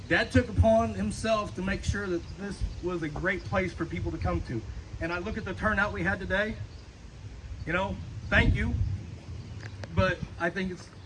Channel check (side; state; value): both; identical; correlation 1.00